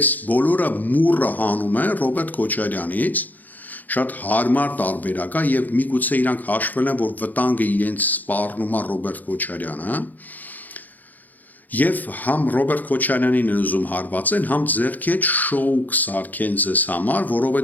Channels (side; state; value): right; late; 0.083 ms